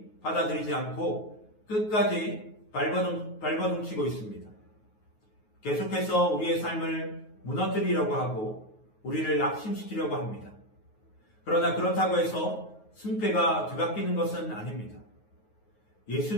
받아들이지 않고 끝까지 발버둥치고 있습니다. 계속해서 우리의 삶을 무너뜨리려고 하고 우리를 낙심시키려고 합니다. 그러나 그렇다고 해서 승패가 뒤바뀌는 것은 아닙니다. 예수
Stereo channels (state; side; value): late; right; 9.4 ms